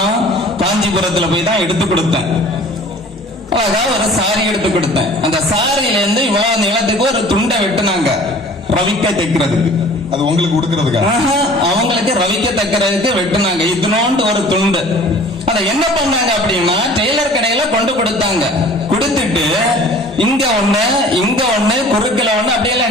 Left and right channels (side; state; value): both; normal; correlation 0.48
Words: காஞ்சிபுரத்துல போய் தான் எடுத்து கொடுத்தேன். அழகா ஒரு சாரி எடுத்து கொடுத்தேன். அந்த சாரியில இருந்து இவ்வளவு நிலத்துக்கு ஒரு துண்டை வெட்டினாங்க, ரவிக்க தைக்கிறதுக்கு. அது உங்களுக்கு கொடுக்கறதுக்கா? அவங்களுக்கு ரவிக்க தைக்கிறதுக்கு வெட்டினாங்க. இதனோண்டு ஒரு துண்டு. அதை என்ன பண்ணாங்க அப்படின்னா, டெய்லர் கடையில கொண்டு கொடுத்தாங்க. கொடுத்துட்டு இங்க ஒண்ணு இங்க ஒண்ணு குறுக்கல ஒண்ணு